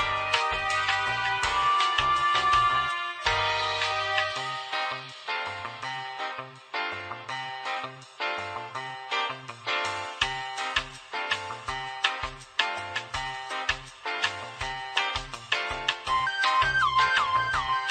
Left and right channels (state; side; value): identical; both; correlation 1.00